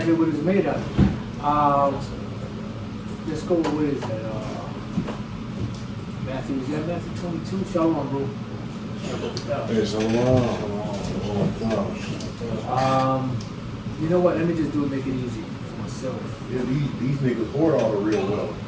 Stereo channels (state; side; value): identical; both; correlation 1.00